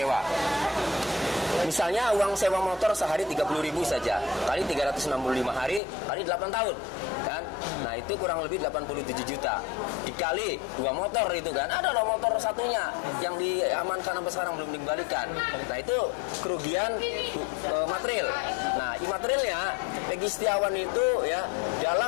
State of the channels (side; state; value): right; drops out; at 5.8 s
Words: Misalnya uang sewa motor sehari 30.000 saja, kali 365 hari, kali 8 tahun kan. Nah itu kurang lebih 87 juta. Dikali 2 motor itu kan, ada loh motor satunya yang diamankan sampai sekarang belum dikembalikan. Nah itu kerugian material. Nah imaterialnya Peggy Setiawan itu ya